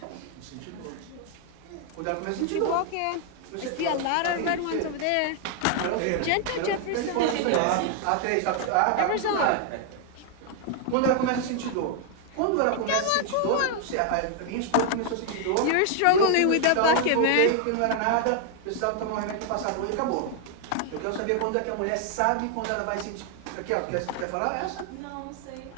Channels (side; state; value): both; different; correlation 0.00